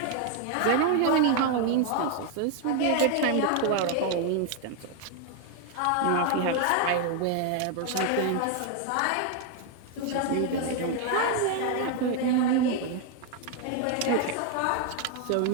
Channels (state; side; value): different; both; correlation 0.01